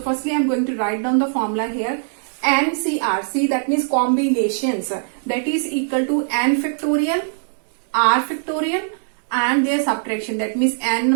firstly I am going to write down the formula here. NCR, see, that means combinations, that is equal to n factorial, r factorial and their subtraction, that means n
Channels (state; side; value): silent; left; 65 dB below the other